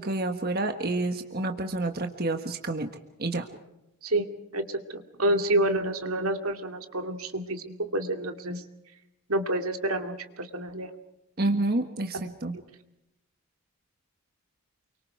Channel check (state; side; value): normal; both; correlation 0.06